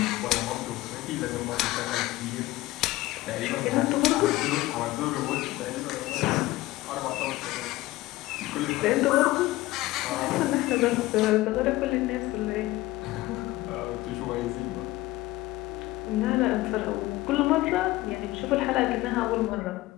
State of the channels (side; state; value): right; quieter; 17.8 dB